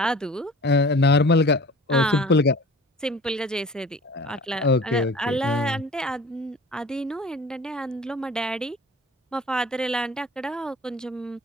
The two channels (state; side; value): normal; both; correlation 0.43